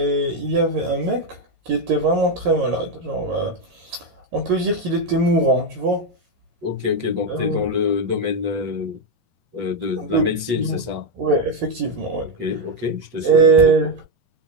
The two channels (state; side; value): late; left; 8.2 ms